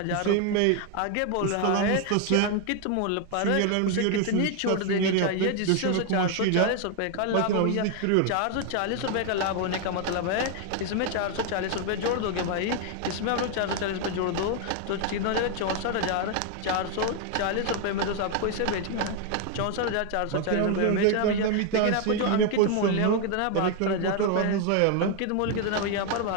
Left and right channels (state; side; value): different; both; correlation 0.00